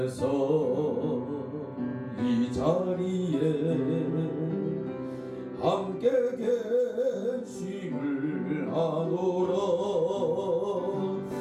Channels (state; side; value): identical; both; correlation 1.00